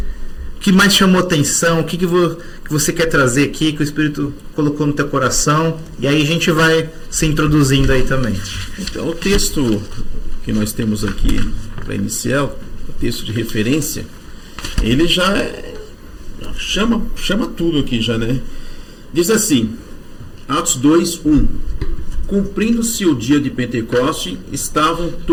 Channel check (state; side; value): identical; both; correlation 1.00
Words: mais chamou atenção, o que você quer trazer aqui, que o Espírito colocou no teu coração, e aí a gente vai se introduzindo aí também. Então o texto que nós temos aqui para iniciar, o texto de referência, ele já chama tudo aqui já, né? Diz assim, Atos 2:1. Cumprindo-se o dia de Pentecoste, estavam